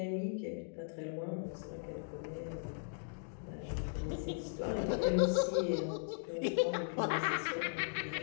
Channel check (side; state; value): right; silent; digital silence